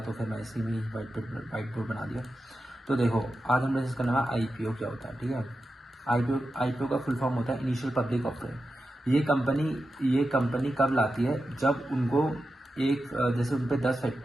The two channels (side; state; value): both; normal; correlation 0.90